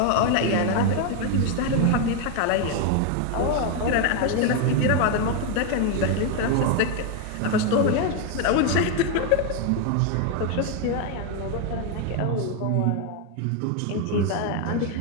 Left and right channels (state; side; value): different; both; correlation 0.01